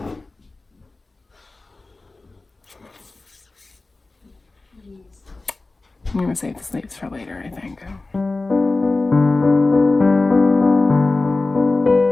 I'm gonna save the sleeves for later, I think.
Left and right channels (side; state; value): right; quieter; 3.3 dB